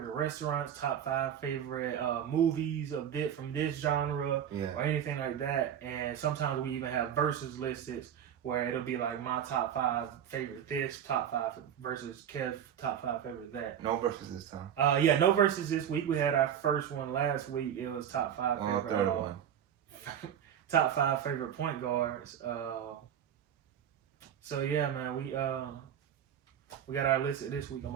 restaurants, top 5 favorite movies of this from this genre, or anything like that. And sometimes we even have versus listed where it'll be like my top 5 favorite this, top 5 versus Kev's top 5 favorite that. No versus this time. Yeah, no versus this week. We had our first one last week. It was top 5 favorite. Third one. Top 5 favorite point guards. So yeah, man, we got our list this week. I'm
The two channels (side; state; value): left; quieter; 9.3 dB